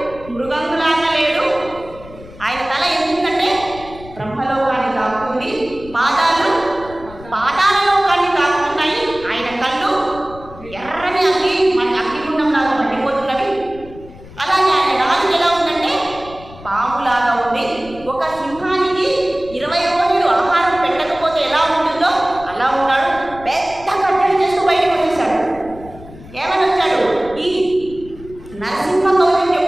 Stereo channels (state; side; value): noise; left; rumble, 18 dB below the sound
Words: మృగంలాగా లేడు. ఆయన తల ఎందుకంటే బ్రహ్మలోకాన్ని తాకుతుంది, పాదాలు పాతాళలోకాన్ని తాకుతున్నాయి. ఆయన కళ్ళు ఎర్రని అగ్ని మన అగ్నిగుండంలాగా మండిపోతున్నవి. అలాగే ఆయన నాలుగు ఎలా ఉందంటే పాములాగా ఉంది. ఒక సింహానికి 20 రోజులు ఆహారం పెట్టకపోతే ఎలా ఉంటుందో అలా ఉన్నాడు. పెద్ద కట్టడి చేస్తూ బయటకు వచ్చేసాడు. ఏమని వచ్చాడు? ఈ నరసింహ కౌశం